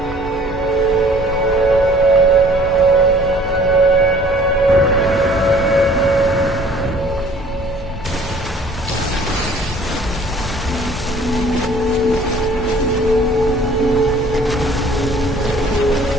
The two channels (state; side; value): normal; both; correlation 0.53